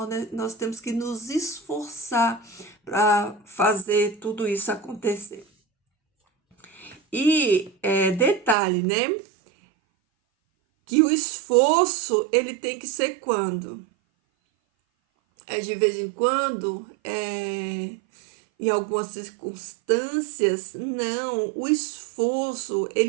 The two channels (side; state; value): left; drops out; at 8.6 s